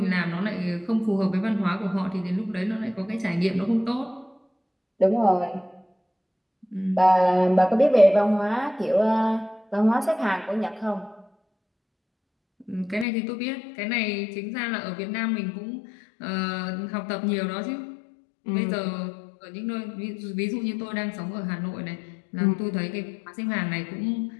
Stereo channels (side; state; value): right; drops out; at 13.1 s